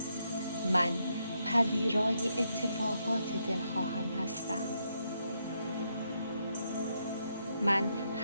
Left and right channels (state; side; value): inverted; both; correlation -0.79